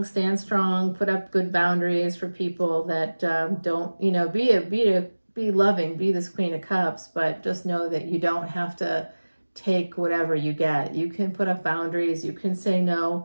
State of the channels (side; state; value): both; inverted; correlation -1.00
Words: stand strong, put up good boundaries for people that don't, be loving, be this Queen of Cups, but just know that you don't have to take whatever you get. You can put up boundaries, you can say